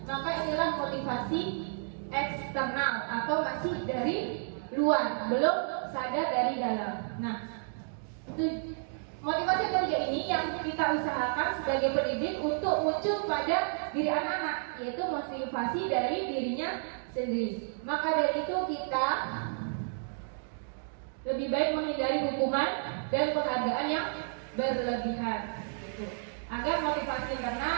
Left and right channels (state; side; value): silent; left; digital silence